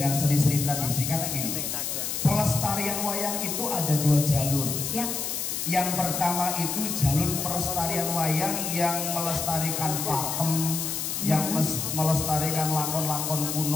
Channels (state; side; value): noise; left; hiss, 3 dB below the sound